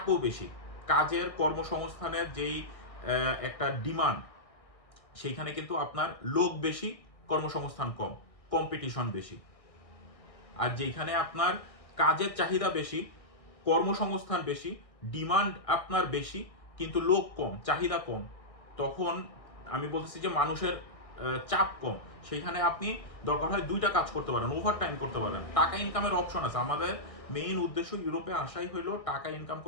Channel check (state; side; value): late; right; 1.6 ms